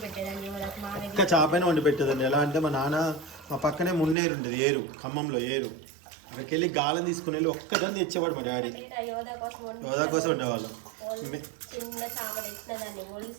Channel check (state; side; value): drops out; left; at 4.2 s